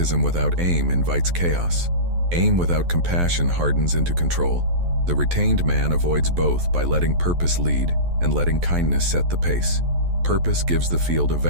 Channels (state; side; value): late; left; 11 ms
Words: without aim invites chaos. Aim without compassion hardens into control. The retained man avoids both by letting purpose lead and letting kindness set the pace. Purpose gives the field a